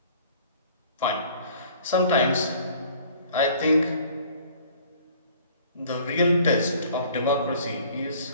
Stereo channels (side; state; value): both; inverted; correlation -0.53